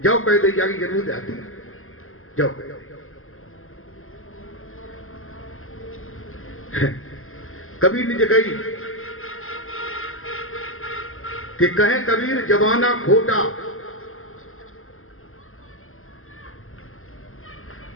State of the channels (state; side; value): late; right; 0.61 ms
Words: कह दे जागी जरूर आती है, जाओ कह। कबीर ने कही कि कहे कबीर जमाना खोटा,